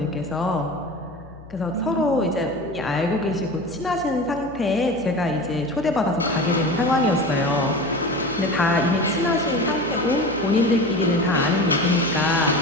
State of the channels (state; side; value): noise; left; hum, 19 dB below the sound